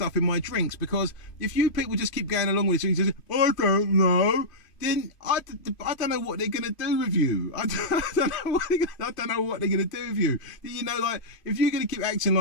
in my drinks, because if you people just keep going along with it and you say, I don't know, then I don't know what they're going to do with you. I don't know what they're going to do with you. You know, like, if you're going to keep acting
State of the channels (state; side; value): late; right; 2.5 ms